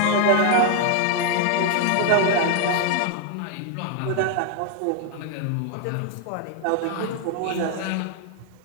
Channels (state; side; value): different; both; correlation 0.00